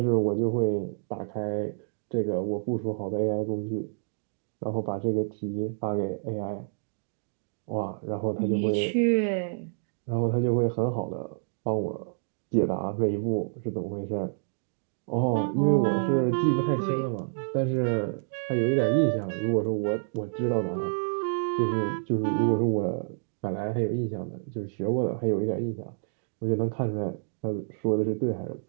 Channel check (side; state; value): left; silent; digital silence